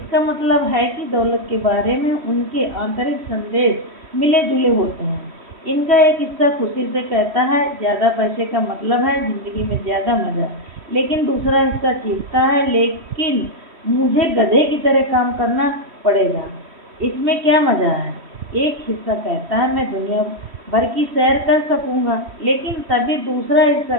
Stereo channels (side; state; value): left; late; 3.1 ms